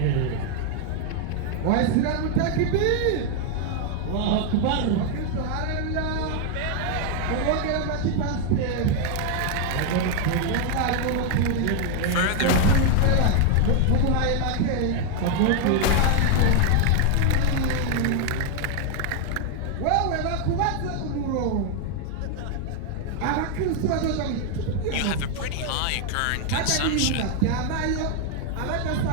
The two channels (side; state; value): both; different; correlation 0.00